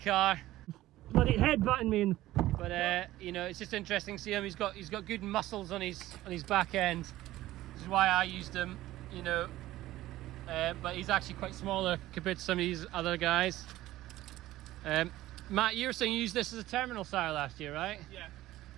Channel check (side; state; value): left; quieter; 15.7 dB